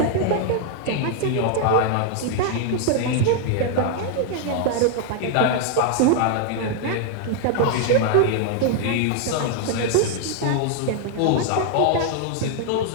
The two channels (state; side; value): different; both; correlation 0.00